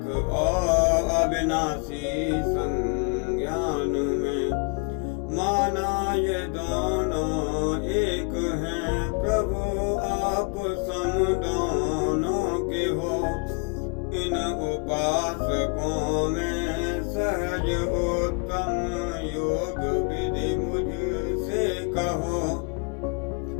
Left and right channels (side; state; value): right; quieter; 34.6 dB